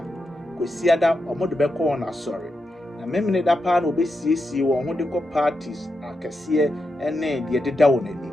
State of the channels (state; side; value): normal; both; correlation 0.86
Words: kwasi ada omodo be kɔ na sorry na memne da pa na obesiesie won ho de kɔ parties akɛse ene de deda won ani